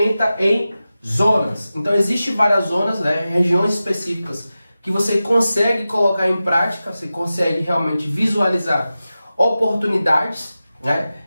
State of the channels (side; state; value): both; inverted; correlation -0.94